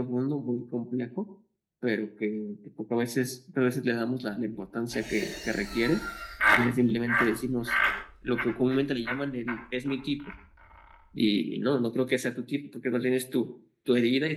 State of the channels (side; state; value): both; identical; correlation 1.00